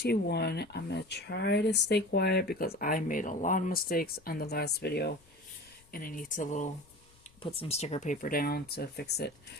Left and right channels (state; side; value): noise; left; rumble, 29 dB below the sound